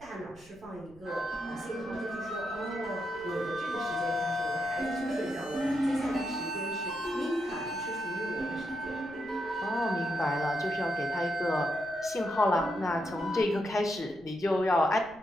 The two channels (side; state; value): right; noise; rumble, 25 dB below the sound